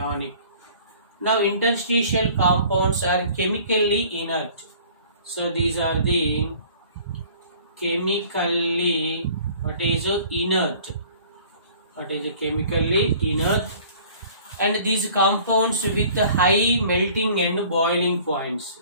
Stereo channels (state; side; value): inverted; both; correlation -0.51